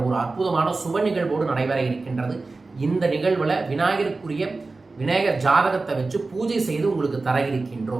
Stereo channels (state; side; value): quieter; left; 3.6 dB